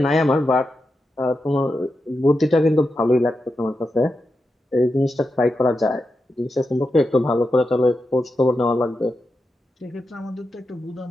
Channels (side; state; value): both; normal; correlation 0.88